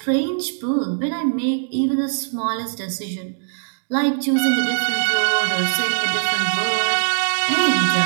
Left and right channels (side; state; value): left; silent; digital silence